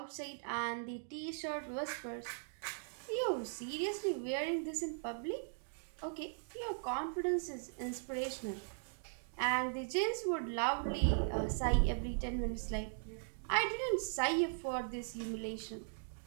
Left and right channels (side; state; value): left; silent; digital silence